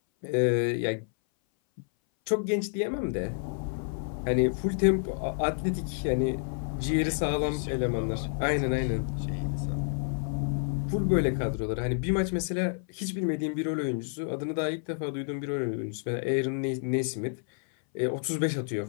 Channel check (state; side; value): silent; right; 58 dB below the other